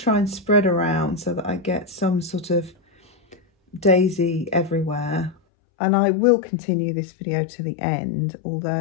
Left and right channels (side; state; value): right; drops out; at 5.4 s